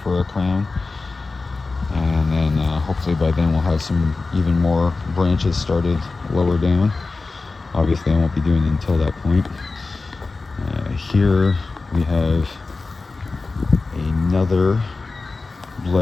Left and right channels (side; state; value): right; quieter; 3.8 dB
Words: for a crown. And then hopefully by then we'll have some even more branches started lower down. Obviously I won't be doing it until that point. Here we have another